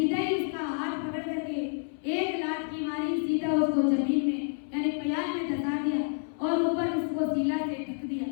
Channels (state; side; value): silent; right; 59 dB below the other